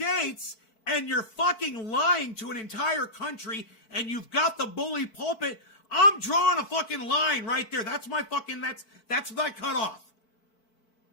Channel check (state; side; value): late; right; 4.5 ms